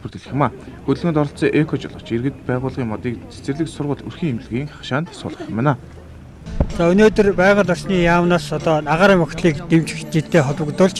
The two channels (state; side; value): identical; both; correlation 1.00